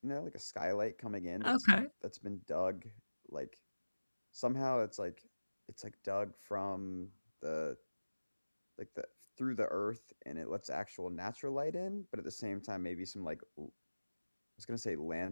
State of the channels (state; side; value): inverted; both; correlation -1.00